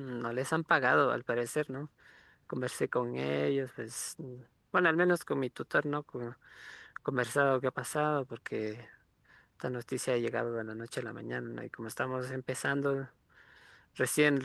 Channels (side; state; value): both; identical; correlation 1.00